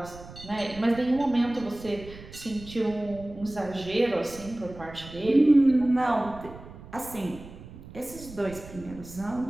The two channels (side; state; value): right; noise; rumble, 16 dB below the sound